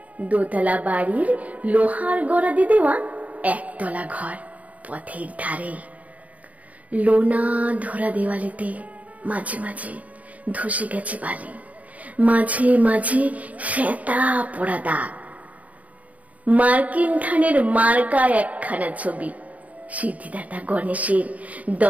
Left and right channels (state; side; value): late; left; 0.070 ms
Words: দোতলা বাড়ির লোহার গড়াদি দেওয়া একতলা ঘর পথের ধারে। লোনা ধরা দেওয়ালেতে মাঝে মাঝে ধসে গেছে বালি, মাঝে মাঝে শ্বেতা পড়া দাগ। মার্কিন ধানের মার্কা একখানা ছবি, সিদ্ধিদাতা গণেশের